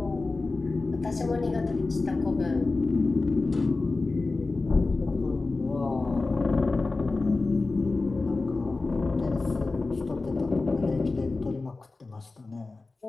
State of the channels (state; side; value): quieter; right; 3.5 dB